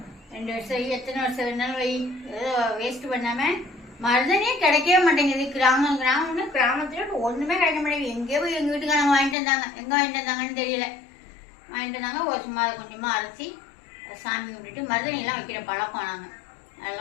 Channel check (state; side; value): drops out; right; at 9.3 s